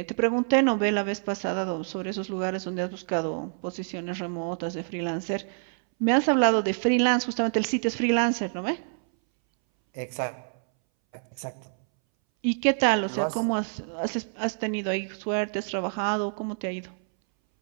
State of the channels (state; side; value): silent; left; 60 dB below the other